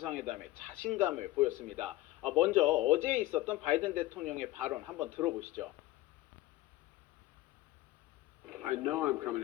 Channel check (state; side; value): quieter; right; 17.0 dB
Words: 자신감을 보였습니다. 먼저 어제 있었던 바이든 대통령의 발언 한번 들어보시죠. I know I'm coming